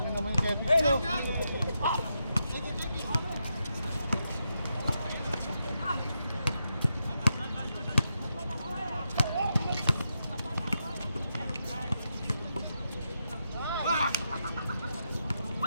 nyo naman yung Kevin nyo.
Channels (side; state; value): both; inverted; correlation -0.85